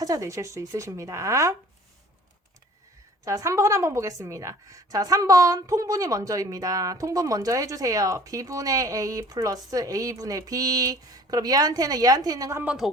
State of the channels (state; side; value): normal; both; correlation 0.50